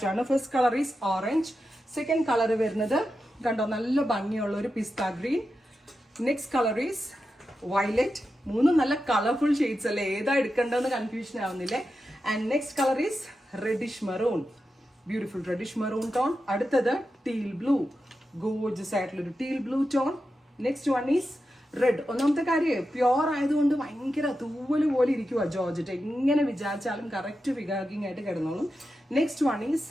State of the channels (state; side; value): normal; both; correlation 0.90